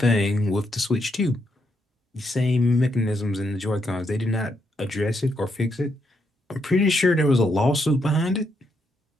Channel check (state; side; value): normal; both; correlation 0.78